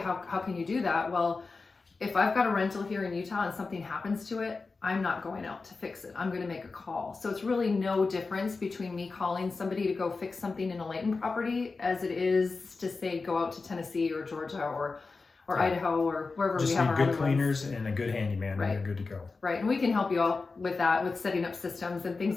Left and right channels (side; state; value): right; quieter; 4.1 dB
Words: How can you do that? Well, if I've got a rental here in Utah and something happens to it, I'm not going out to fix it. I'm going to make a call. So it's really no difference between me calling somebody to go fix something in a Layton property as it is to say go out to Tennessee or Georgia or Idaho or wherever we have our good cleaners and a good handyman, and you're good to go. Right, and we can help you all with that, with setting up systems and things